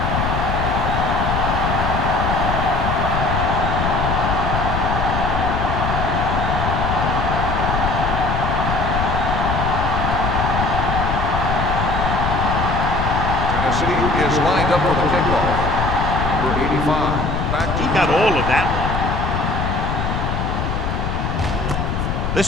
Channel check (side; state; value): left; noise; rumble, 1 dB below the sound